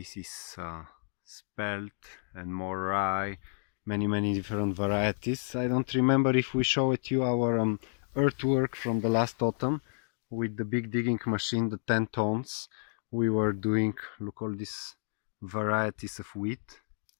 is spelt and more rye, many different varieties. I don't remember if we showed you our earthwork from the last autumn with the big digging machine, the 10 tons. We were doing, look, all these varieties of wheat.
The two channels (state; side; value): silent; right; digital silence